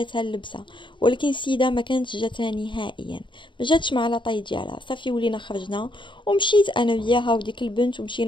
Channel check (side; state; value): right; late; 0.23 ms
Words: اللبسه، ولكن السيده ما كانتش جاتها نهائيا، ما جاتش مع لاطاي ديالها. صافي ولينا خرجنا ومشيت انا وياها وديك البنت